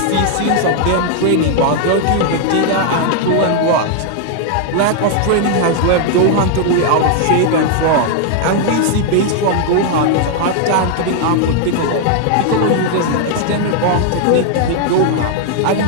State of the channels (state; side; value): different; both; correlation 0.00